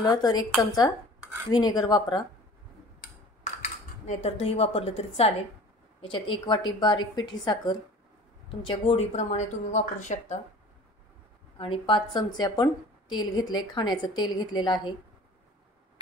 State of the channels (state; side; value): normal; both; correlation 0.45